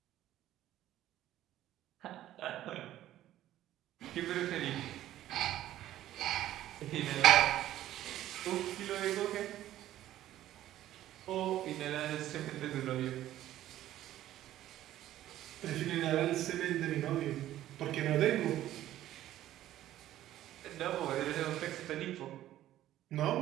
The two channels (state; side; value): quieter; left; 13.3 dB